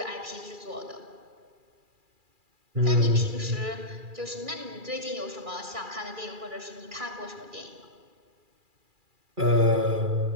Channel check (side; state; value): left; late; 2.4 ms